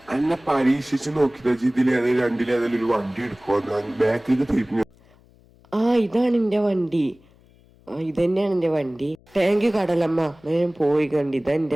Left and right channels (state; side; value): noise; left; hum, 29 dB below the sound